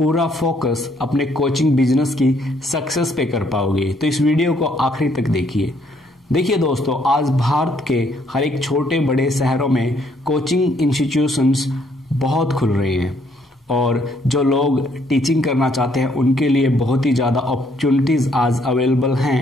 फोकस अपने कोचिंग बिजनेस की सक्सेस पे कर पाओगे। तो इस वीडियो को आखिरी तक देखिए। देखिए दोस्तों, आज भारत के हर एक छोटे बड़े शहरों में कोचिंग इंस्टीट्यूशंस बहुत खुल रहे हैं और जो लोग टीचिंग करना चाहते हैं उनके लिए बहुत ही ज़्यादा अपॉर्चुनिटीज़ आज अवेलेबल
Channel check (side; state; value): both; normal; correlation 0.68